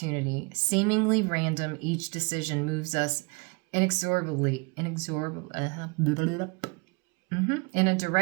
Seemingly random, each decision moves us inexorably in a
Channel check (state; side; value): quieter; left; 30.1 dB